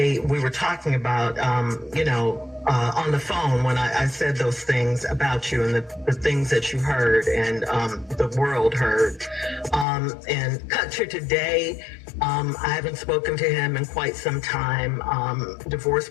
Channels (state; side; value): drops out; right; at 9.9 s